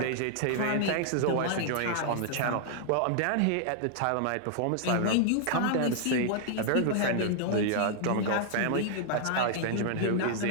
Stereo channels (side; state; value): both; different; correlation -0.01